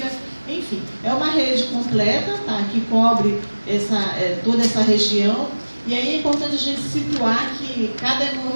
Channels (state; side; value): inverted; both; correlation -1.00